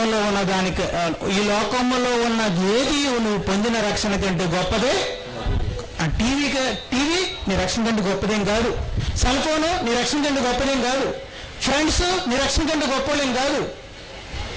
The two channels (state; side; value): identical; both; correlation 1.00